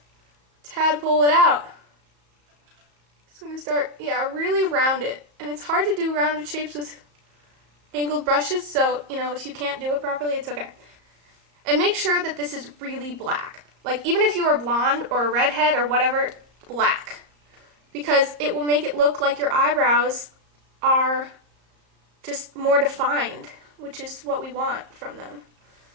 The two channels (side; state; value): left; late; 34 ms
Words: tadpole it out. Just going to start, really round it. And it's hard to do rounded shapes with angled brushes, so, if you can't do it properly, it's okay. And make sure that this is really black. Like, even if you are blonde or a redhead or whatever, black. Because it will make it look like your eyebrows are just more defined, which is what we want from them.